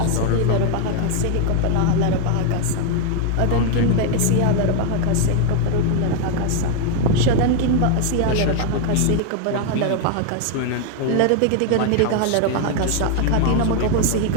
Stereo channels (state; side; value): different; both; correlation 0.00